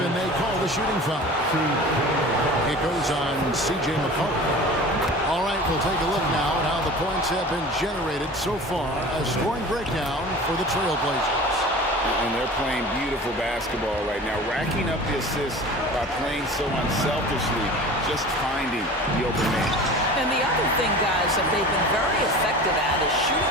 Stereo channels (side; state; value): both; normal; correlation 0.38